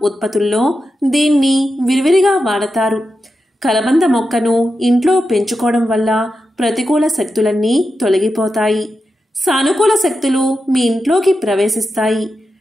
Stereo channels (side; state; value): both; normal; correlation 0.89